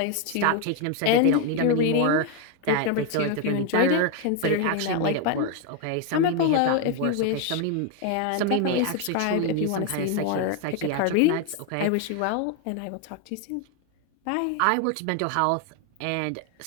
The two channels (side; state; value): both; different; correlation 0.01